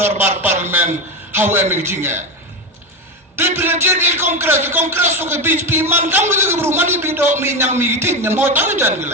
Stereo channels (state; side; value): normal; both; correlation 0.15